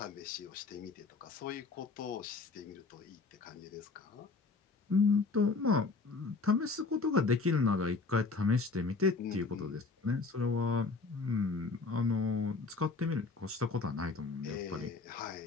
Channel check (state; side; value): quieter; right; 4.1 dB